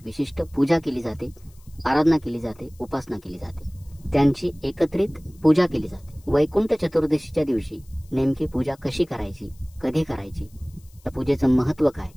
विशिष्ट पूजा केली जाते, आराधना केली जाते, उपासना केली जाते, त्यांची एकत्रित पूजा केली जाते. वैकुंठ चतुर्दशीच्या दिवशी नेमकी पूजा कशी करायची, कधी करायची, या पूजेचं महत्त्व काय,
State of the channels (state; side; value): noise; left; hiss, 29 dB below the sound